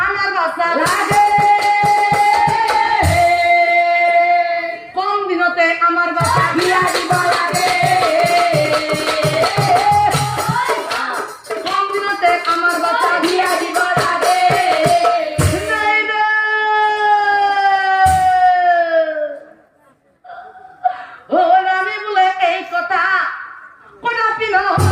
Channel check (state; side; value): identical; both; correlation 1.00